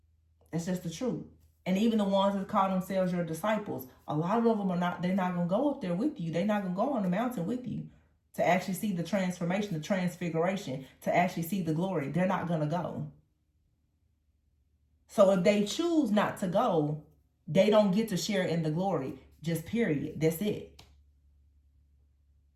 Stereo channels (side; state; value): both; identical; correlation 1.00